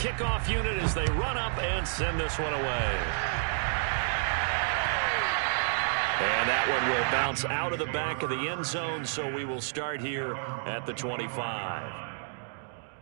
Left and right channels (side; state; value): left; silent; digital silence